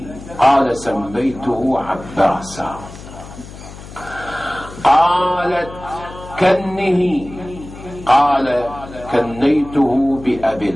قال سميته عباسا. قالت كنه. قال كنيته بأبي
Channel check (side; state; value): left; noise; hum, 15 dB below the sound